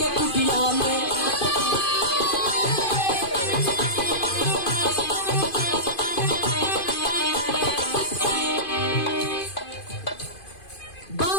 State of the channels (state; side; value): late; right; 2.5 ms